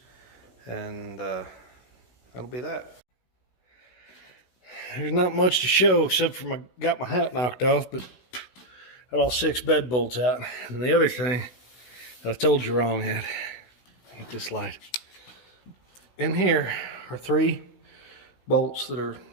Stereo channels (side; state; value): right; late; 16 ms